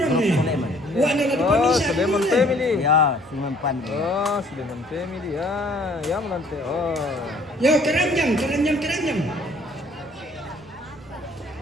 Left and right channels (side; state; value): right; noise; rumble, 29 dB below the sound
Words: Grup nih. Sulaiman. Wah, ada di Oh, pamisan. Sulaiman family. Ya, Sulaiman. Oh, Sulaiman family. Ya, ya menante. Oh. Yo, keranjang.